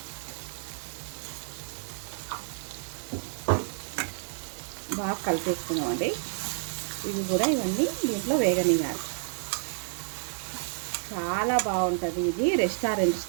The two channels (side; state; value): left; silent; digital silence